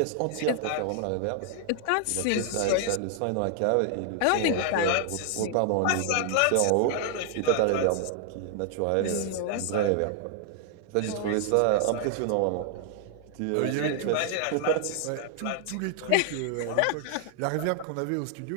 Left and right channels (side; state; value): both; different; correlation 0.00